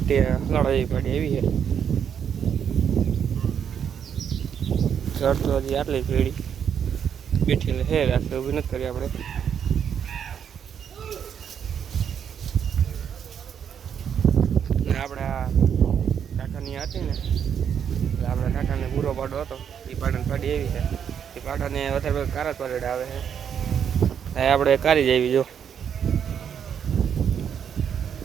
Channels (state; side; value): quieter; left; 8.1 dB